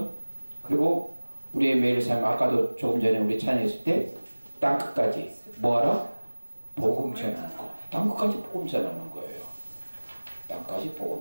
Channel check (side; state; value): both; inverted; correlation -1.00